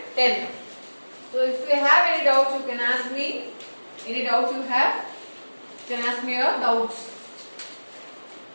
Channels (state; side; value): inverted; both; correlation -1.00